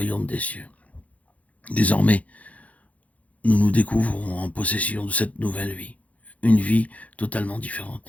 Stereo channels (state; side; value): late; right; 0.069 ms